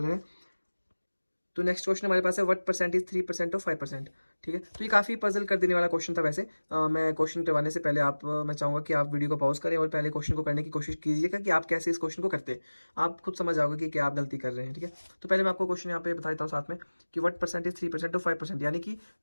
है। तो नेक्स्ट क्वेश्चन हमारे पास है व्हाट परसेंटेज 3% और 5%, ठीक है। तो ये काफ़ी पजल कर देने वाला क्वेश्चन था वैसे। मैं क्वेश्चन करवाने से पहले मैं चाहूँगा कि आप वीडियो को पॉज करें और पहले क्वेश्चन को करने की कोशिश कीजिएगा कि आप कैसे इस क्वेश्चन को करते हैं। आप खुद समझ जाओगे कि क्या आप गलती कर रहे हैं, ठीक है। तो पहले मैं आपको क्वेश्चन यहाँ पे बता देता हूँ साथ में कि व्हाट परसेंटेज 3% और 5%, यानी कि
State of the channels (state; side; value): inverted; both; correlation -1.00